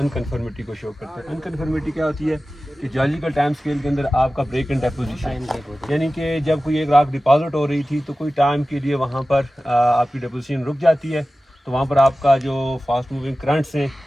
को शो करते हैं। अनकन्फर्मिटी क्या होती है कि जियोलॉजिकल टाइम स्केल के अंदर आपका ब्रेक इन डेपोजिशन, यानी कि जब कोई एक राख डिपॉजिट हो रही थी तो कोई टाइम के लिए वहाँ पर आपकी डेपोजिशन रुक जाती है, तो वहाँ पर आपका जो फास्ट मूविंग करंट्स हैं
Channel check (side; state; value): both; normal; correlation 0.96